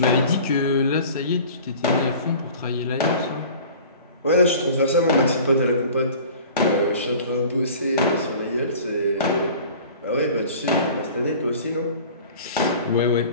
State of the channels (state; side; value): inverted; both; correlation -0.44